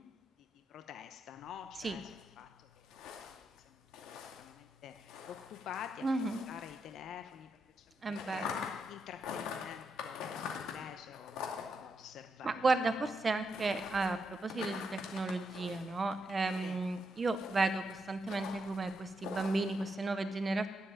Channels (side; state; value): both; normal; correlation 0.83